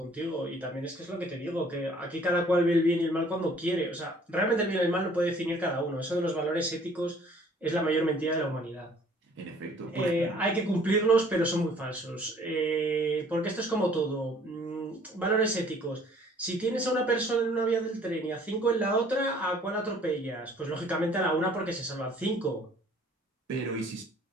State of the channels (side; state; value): both; normal; correlation 0.56